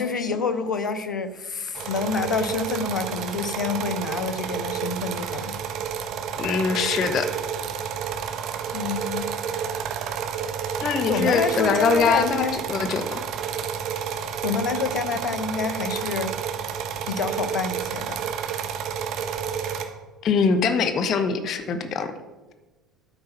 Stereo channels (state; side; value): normal; both; correlation 0.43